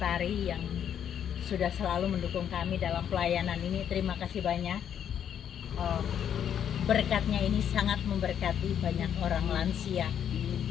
yang sudah selalu mendukung kami dalam pelayanan ini. Terima kasih banyak. Berkatnya ini sangat memberkati banyak orang lansia.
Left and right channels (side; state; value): right; quieter; 9.1 dB